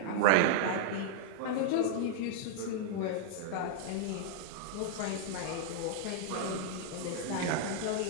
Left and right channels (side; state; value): both; different; correlation -0.01